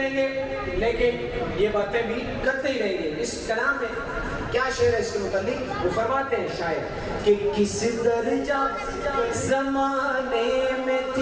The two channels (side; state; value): both; identical; correlation 1.00